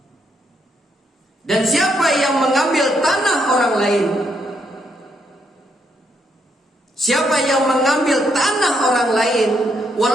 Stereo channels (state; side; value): normal; both; correlation 0.76